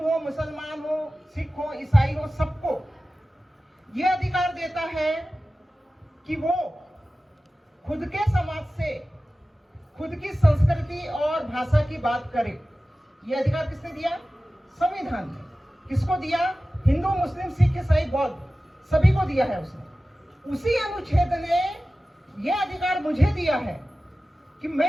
हो, मुसलमान हो, सिख हो, ईसाई हो, सबको यह अधिकार देता है कि वो खुद के समाज से, खुद की संस्कृति और भाषा की बात करे। यह अधिकार किसने दिया? संविधान ने। किसको दिया? हिंदू, मुस्लिम, सिख, ईसाई, बौद्ध, सभी को दिया है उसने। उसी अनुच्छेद ने यह अधिकार मुझे दिया है कि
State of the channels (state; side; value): normal; both; correlation 0.96